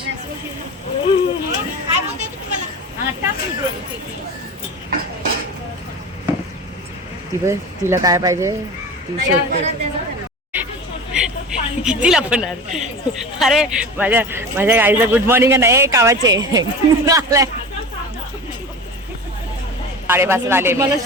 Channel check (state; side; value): normal; both; correlation 0.32